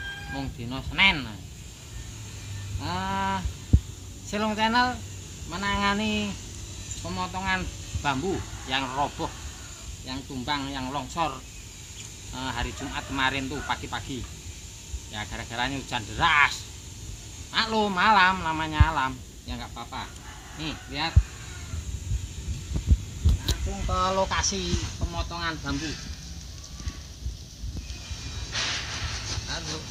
Mung dina Senin. Selong Channel menangani pemotongan bambu yang roboh, yang tumbang, yang longsor hari Jumat kemarin tuh pagi-pagi. Ya gara-garanya hujan deras. Maklum malam, namanya alam. Ya nggak apa-apa. Nih lihat. Langsung ke lokasi pemotongan bambu. Aduh.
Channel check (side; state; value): both; identical; correlation 1.00